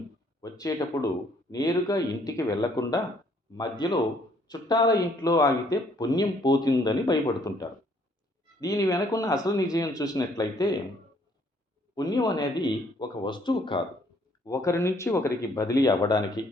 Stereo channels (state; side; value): normal; both; correlation 0.64